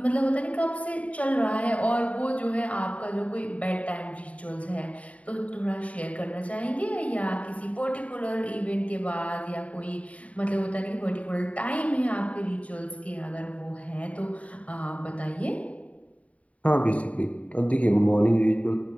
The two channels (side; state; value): right; late; 0.067 ms